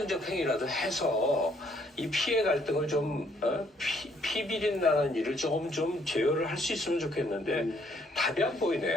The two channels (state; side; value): normal; both; correlation 0.67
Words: 행위라도 해서 이 피해 갈등을 좀 피비린 나는 일을 조금 좀 제어를 할 수 있으면 좋겠는데 답이 안